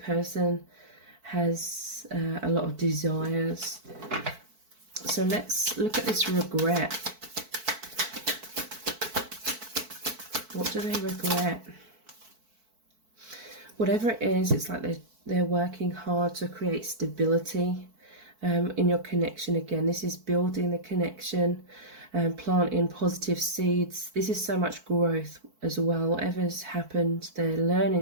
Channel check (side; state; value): left; late; 4.5 ms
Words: has a lot of desires. So let's look at this regret. What do they regret? Whatever it is, it's like they're working hard to create stability in your connection. Again, this is building the connection and planting positive seeds. This is so much growth as well. Whatever's happened, they're